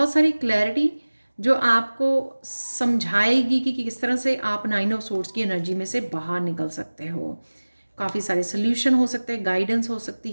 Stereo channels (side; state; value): both; inverted; correlation -1.00